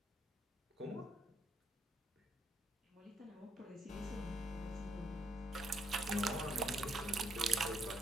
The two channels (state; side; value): normal; both; correlation 0.74